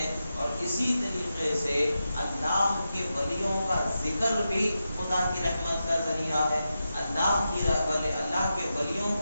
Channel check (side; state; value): both; inverted; correlation -0.89